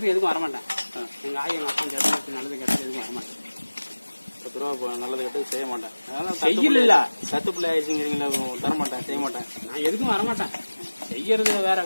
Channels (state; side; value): inverted; both; correlation -1.00